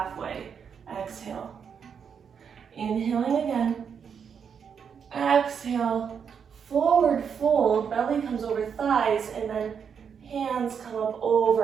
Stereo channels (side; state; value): left; quieter; 7.0 dB